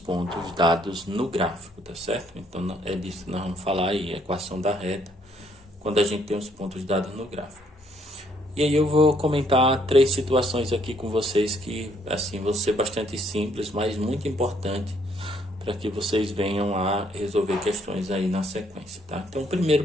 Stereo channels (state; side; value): normal; both; correlation 0.68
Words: dados no gráfico, tá certo? Então é disso que nós vamos falar aí, equação da reta, quando a gente tem os pontos dados no gráfico. E aí eu vou comentar 3 situações aqui com vocês que, assim, vão ser bastante simples, mas muito importante para que vocês venham a resolver questões aí na sequência, tá? Então, o primeiro